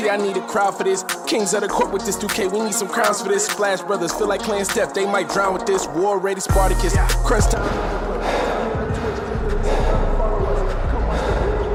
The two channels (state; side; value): identical; both; correlation 1.00